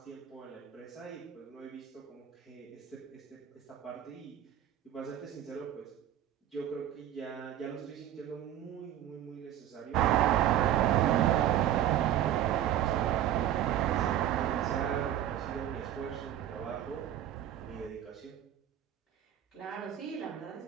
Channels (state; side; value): quieter; left; 11.3 dB